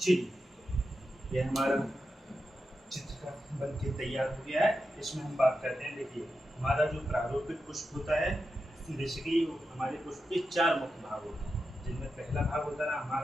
यह हमारा चित्र का बन के तैयार हो गया है। इसमें हम बात करते हैं। देखिए, हमारा जो प्रारूपिक पुष्प होता है, बेसिकली हमारे पुष्प के 4 मुख्य भाग होते हैं, जिनमें पहला भाग होता है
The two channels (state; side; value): normal; both; correlation 0.89